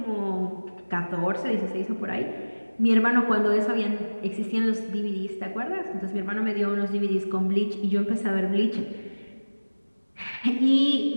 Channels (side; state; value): both; inverted; correlation -1.00